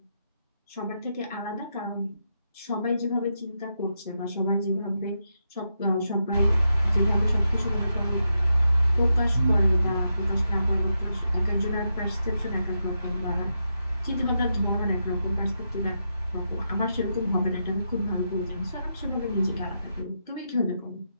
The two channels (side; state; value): both; inverted; correlation -0.84